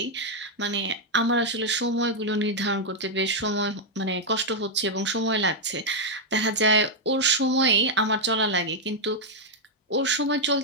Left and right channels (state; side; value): normal; both; correlation -0.01